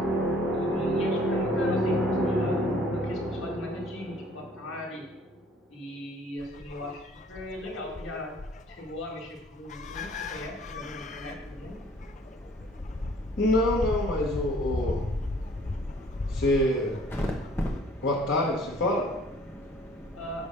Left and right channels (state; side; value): normal; both; correlation 0.56